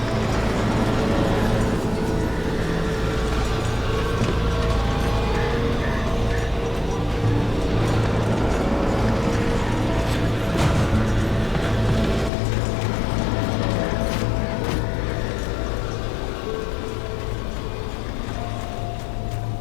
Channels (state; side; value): drops out; right; at 12.3 s